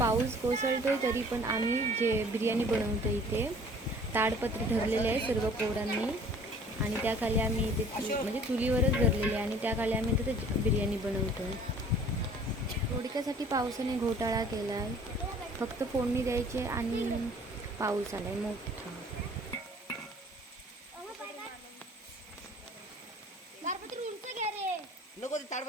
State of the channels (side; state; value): both; normal; correlation 0.51